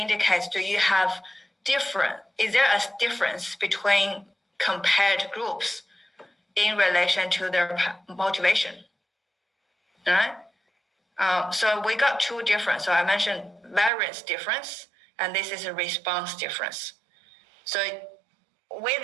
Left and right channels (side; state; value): left; drops out; at 13.9 s